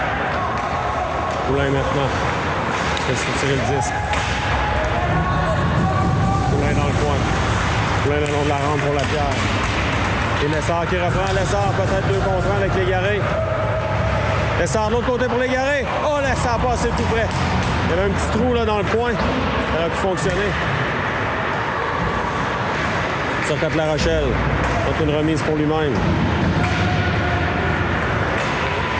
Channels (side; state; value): both; identical; correlation 1.00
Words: Poulain maintenant. Fait tirer le disque. Poulain dans le coin. Poulain le long de la rampe pour Lapierre. Et Lessard qui reprend. Lessard peut-être 2 contre 1 avec Légaré. Lessard de l'autre côté pour Légaré. Oh, Lessard passé tout près. Il y avait un petit trou là dans le coin. Ça aurait pu fonctionner. Sur La Rochelle. C'est une remise pour lui-même.